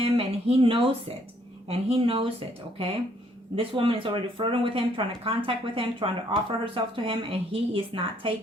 and he knows it. And he knows it, okay? This woman is already flirting with him, trying to contact with him, trying to offer herself to him, and he is not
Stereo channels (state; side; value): normal; both; correlation 0.67